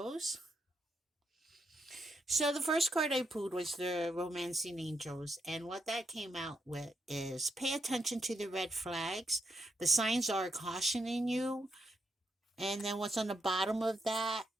So the first card I pulled was the Romancing Angels, and what that came out with is pay attention to the red flags. The signs are cautioning you, and then what's on the bottom of that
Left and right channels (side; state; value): both; normal; correlation 0.81